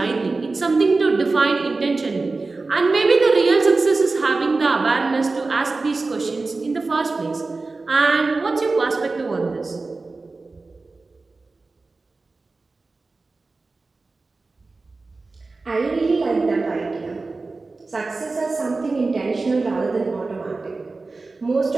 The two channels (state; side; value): quieter; left; 3.7 dB